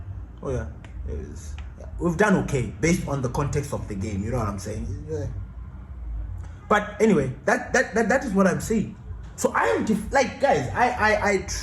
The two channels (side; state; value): both; identical; correlation 1.00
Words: Oh yeah, we've done okay based on the context of the game. You know what I'm saying? Yeah. But anyway, that is what I'm saying. So I am guys. I